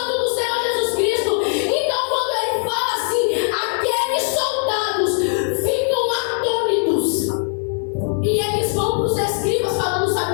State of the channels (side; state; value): right; silent; 63 dB below the other